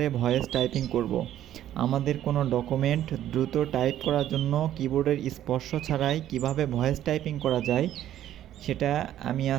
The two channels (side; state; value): left; quieter; 12.0 dB